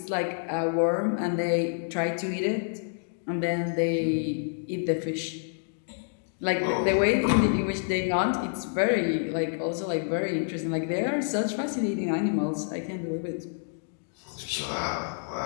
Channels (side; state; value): right; silent; digital silence